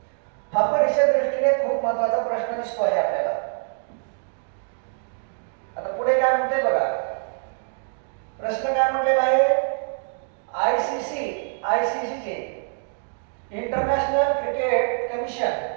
हा परीक्षा दृष्टीने खूप महत्त्वाचा प्रश्न दिसतो आहे आपल्याला. आता पुढे काय म्हणते बघा, प्रश्न काय म्हटलेला आहे? आयसीसी चे इंटरनॅशनल क्रिकेट कमिशन,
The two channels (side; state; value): left; silent; digital silence